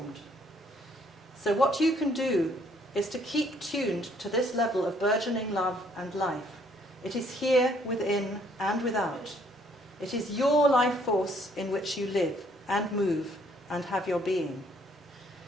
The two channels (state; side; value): normal; both; correlation 0.65